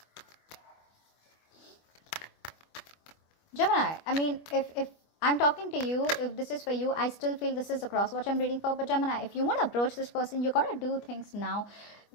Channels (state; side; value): late; right; 24 ms